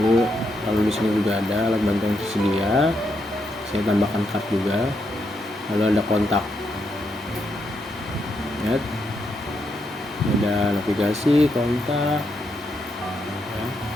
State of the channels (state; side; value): normal; both; correlation 0.80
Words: Lalu di sini juga ada alat bantu yang tersedia. Saya tambahkan card juga. Lalu ada kontak. Lihat. Ada navigasi, kontak. Ya.